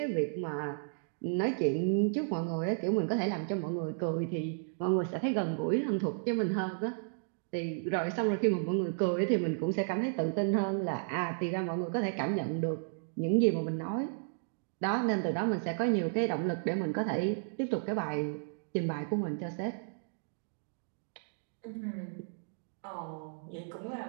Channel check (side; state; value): left; silent; digital silence